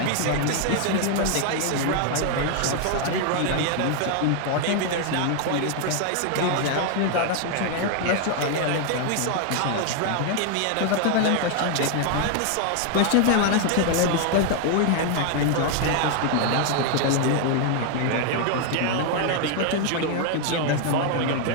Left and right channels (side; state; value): both; different; correlation 0.00